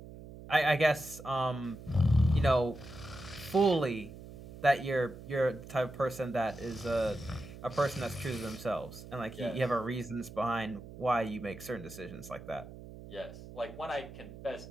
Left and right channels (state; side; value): noise; right; hum, 15 dB below the sound